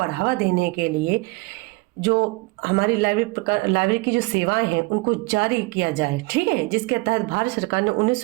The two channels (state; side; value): quieter; left; 24.6 dB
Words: देने के लिए जो हमारी लाइब्रेरी की जो सेवाएं हैं उनको जारी किया जाए। ठीक है, जिसके तहत भारत सरकार ने